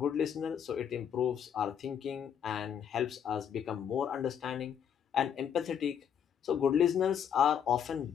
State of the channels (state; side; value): quieter; right; 8.4 dB